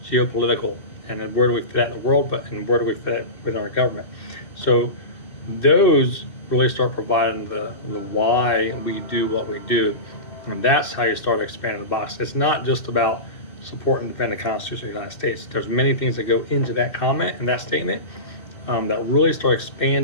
geopolitical, and then where do we fit in the world, and where do we fit within our government. So those really start providing the why we do what we do, and that's how you start expanding the box. It's not just about support and defend the Constitution of the United States. There's many things that go into that comment and that statement that really start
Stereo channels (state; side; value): late; right; 2.6 ms